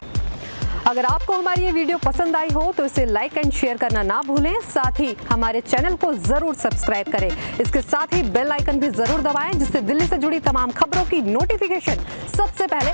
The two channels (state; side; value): inverted; both; correlation -1.00